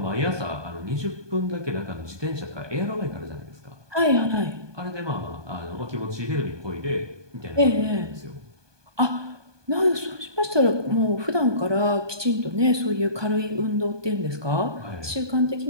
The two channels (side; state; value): left; late; 1.2 ms